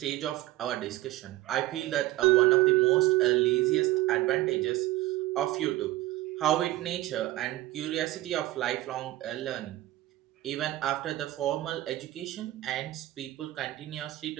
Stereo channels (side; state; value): left; quieter; 16.6 dB